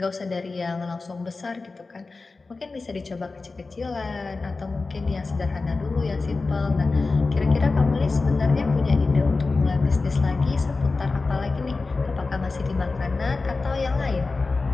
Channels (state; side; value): quieter; right; 3.8 dB